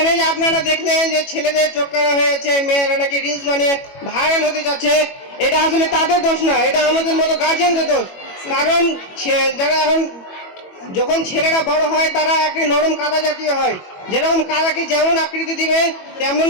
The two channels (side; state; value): right; late; 21 ms